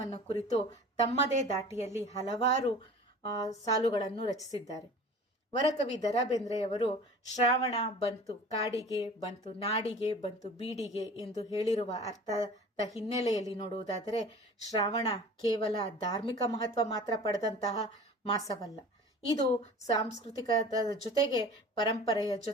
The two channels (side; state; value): both; normal; correlation 0.41